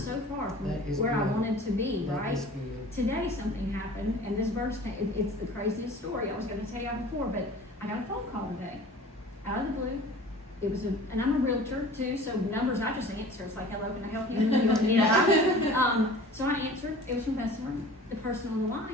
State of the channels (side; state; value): both; normal; correlation 0.43